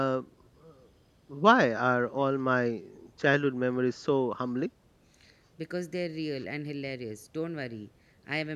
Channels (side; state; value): both; identical; correlation 1.00